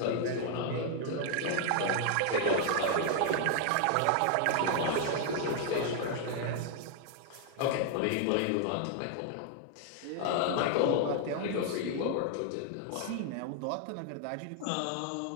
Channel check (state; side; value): different; both; correlation 0.00